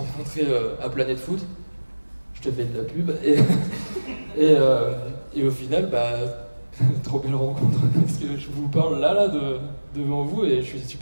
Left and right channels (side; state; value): both; inverted; correlation -1.00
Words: à Planète Foot. Je te fais de la pub et au final, trop belle rencontre parce que je vous parle là devant vous et je suis